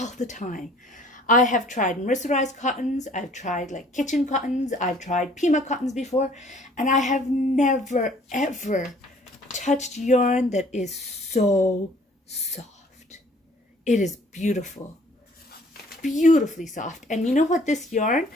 the time. I have tried mercerized cottons. I've tried like kitchen cottons. I've tried Pima cottons before, and I have never, ever touched yarn that is so soft. It is beautiful, beautifully soft. And you know what, this yarn,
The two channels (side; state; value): both; normal; correlation 0.57